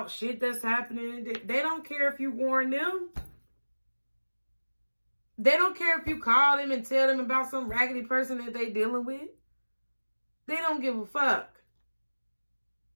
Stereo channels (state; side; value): inverted; both; correlation -1.00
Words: shit that's happening. They don't care if you warn them. They don't care if you call them and tell them about some raggedy person that they dealing with. They don't give a fuck.